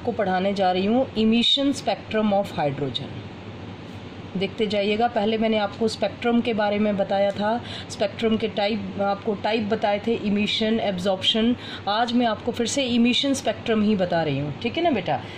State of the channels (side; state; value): both; identical; correlation 1.00